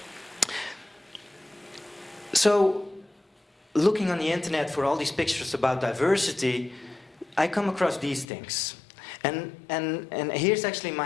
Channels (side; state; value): right; drops out; at 8.2 s